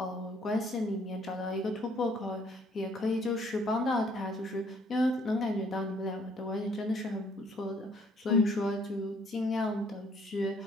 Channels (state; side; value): normal; both; correlation 0.63